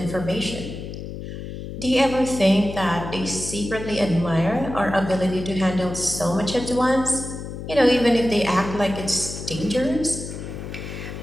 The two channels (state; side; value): noise; left; hum, 9 dB below the sound